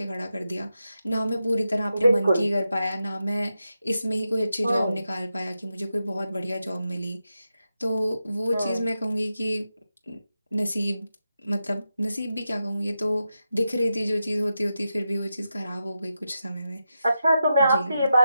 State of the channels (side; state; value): both; inverted; correlation -0.88